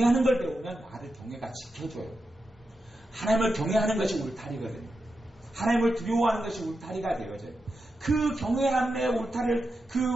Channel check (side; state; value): both; normal; correlation 0.88